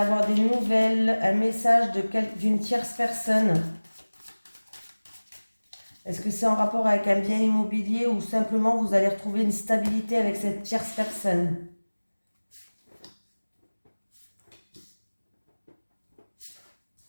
des nouvelles, un message d'une tierce personne. Est-ce que c'est en rapport avec un bien immobilier ou simplement vous allez retrouver une stabilité avec cette tierce personne?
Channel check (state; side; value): inverted; both; correlation -1.00